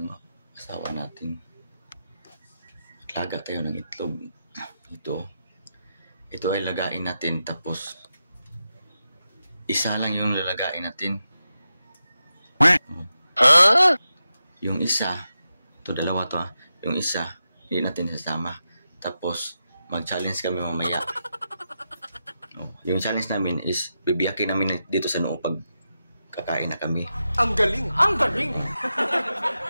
asawa natin. Laga tayo ng itlog. Ito ay lagain natin, tapos isa lang yung lalagain natin. Yung isa, ito dalawa to yung isa, hindi natin sasama. Tapos mag-challenge kami mamaya. Yung challenge namin is bibiyakin namin dito sa noo pag kakain na kami. Ang galing! Ang galing!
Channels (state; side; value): inverted; both; correlation -0.89